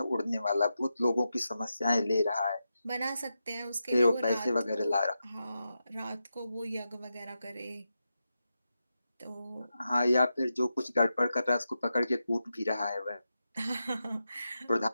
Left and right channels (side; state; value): both; inverted; correlation -0.89